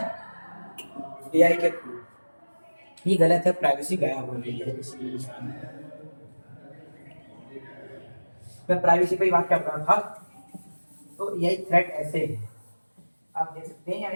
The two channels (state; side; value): inverted; both; correlation -1.00